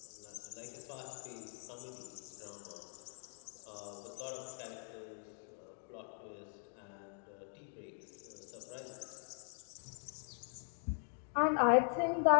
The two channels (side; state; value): right; silent; 50 dB below the other